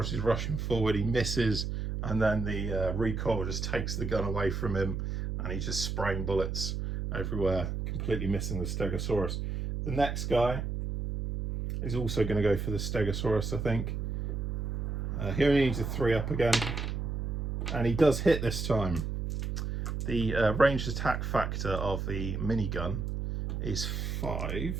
is rushing forward. He misses. And then the recoil just takes the gun away from him. And he's just spraying bullets everywhere, completely missing the Stegosaurus. The next guy, is also going to go for the Stegosaurus, I think. He only needs a 3-up again, and he does hit this time. The ranged attack factor of the minigun is 5,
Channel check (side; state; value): right; noise; hum, 3 dB below the sound